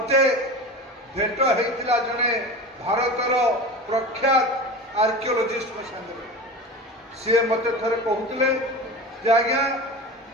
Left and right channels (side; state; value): both; normal; correlation 0.30